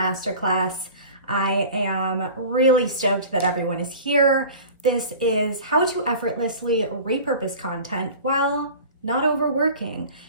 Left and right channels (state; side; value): inverted; both; correlation -0.39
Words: I am really stoked that everyone is here. This is how to effortlessly repurpose content while not overworking.